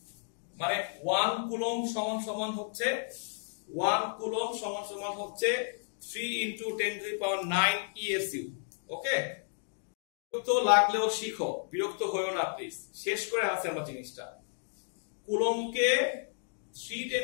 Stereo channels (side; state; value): right; silent; digital silence